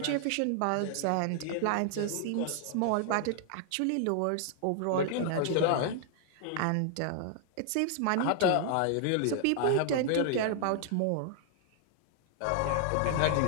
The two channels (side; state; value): both; different; correlation 0.00